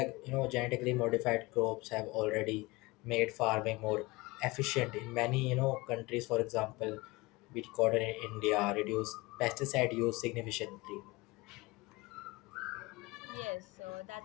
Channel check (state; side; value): quieter; right; 22.8 dB